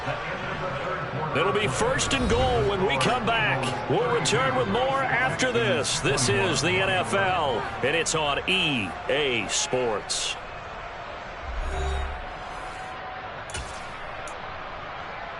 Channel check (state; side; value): identical; both; correlation 1.00